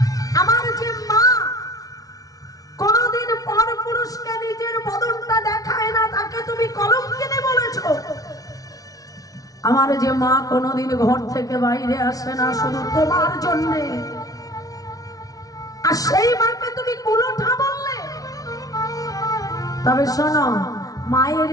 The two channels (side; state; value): right; late; 0.18 ms